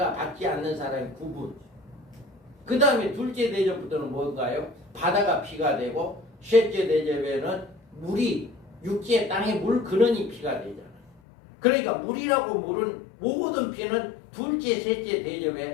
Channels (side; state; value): right; drops out; at 11.1 s